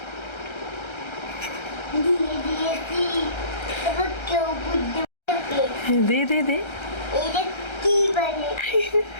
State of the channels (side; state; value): right; late; 1.3 ms